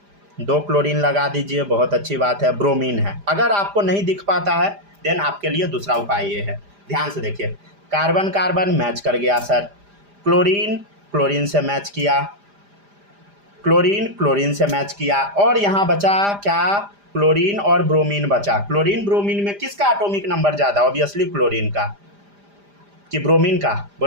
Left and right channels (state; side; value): late; left; 5.0 ms